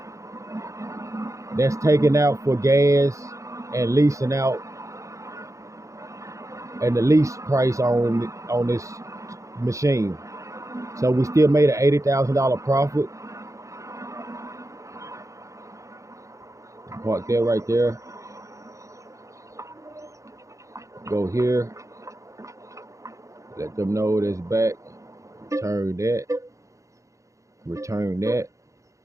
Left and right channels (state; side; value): late; left; 0.15 ms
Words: That's taken out for gas and leasing out, and the lease price on this machine. So we still made an $80,000 profit. Park there, right there. Go here. Let them know that's back. Return that. Return that.